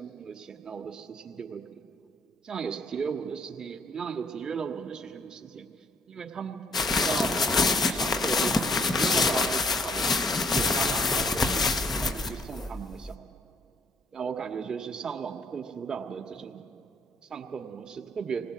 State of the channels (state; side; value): normal; both; correlation 0.65